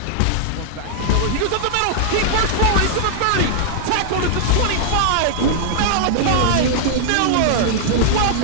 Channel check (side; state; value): both; different; correlation -0.01